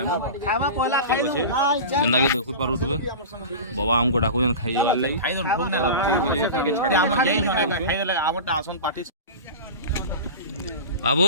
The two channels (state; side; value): inverted; both; correlation -0.30